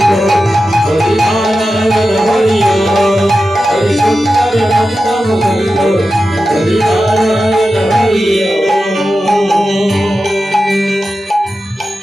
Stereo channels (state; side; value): normal; both; correlation 0.92